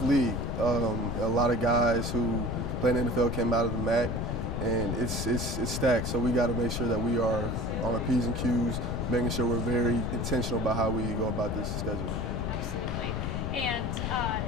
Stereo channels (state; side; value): noise; left; rumble, 3 dB below the sound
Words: league. A lot of guys who play in the NFL came out of the MAC, and it's stacked. So we got to make sure that we are on our P's and Q's, making sure we're very intentional about how we go about this schedule. Absolutely. And